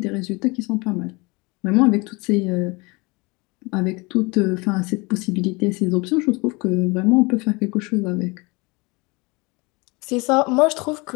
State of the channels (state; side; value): quieter; right; 26.2 dB